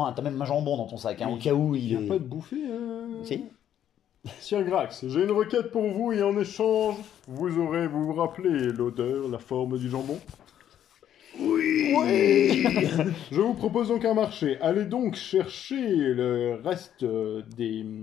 un jambon dans ton sac, hein, Oui. au cas où Il il n'y a est... pas de bouffer Si. Sir Grax, j'ai une requête pour vous et en échange, vous vous rappelez l'odeur, la forme du jambon? Oui. Je vous propose donc un marché. Allez donc chercher le reste des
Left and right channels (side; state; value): right; quieter; 10.4 dB